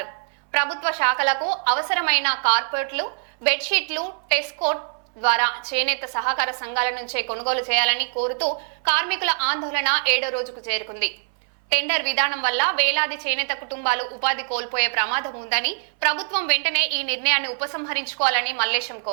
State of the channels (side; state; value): left; silent; 61 dB below the other